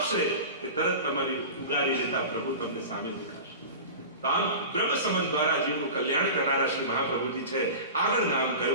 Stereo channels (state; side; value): inverted; both; correlation -0.32